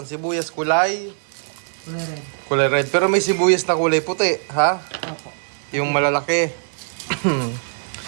sibuyas kulay Kulay red. kulay red. Pero may sibuyas na kulay puti, ha? Opo. Yung malalaki.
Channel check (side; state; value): left; silent; digital silence